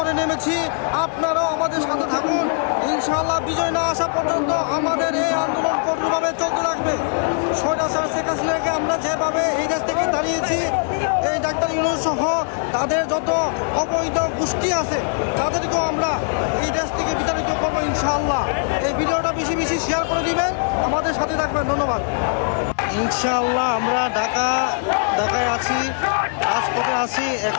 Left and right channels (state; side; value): silent; right; 65 dB below the other